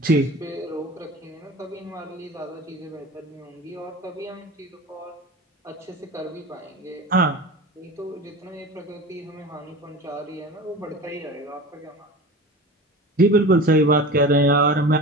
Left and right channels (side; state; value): both; normal; correlation 0.34